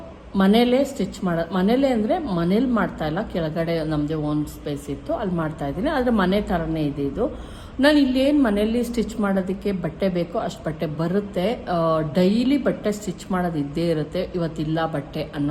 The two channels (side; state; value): both; identical; correlation 1.00